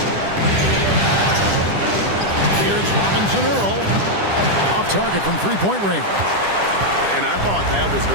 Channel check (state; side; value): late; left; 10 ms